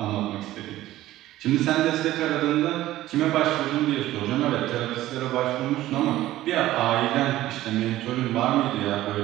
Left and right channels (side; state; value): left; quieter; 15.1 dB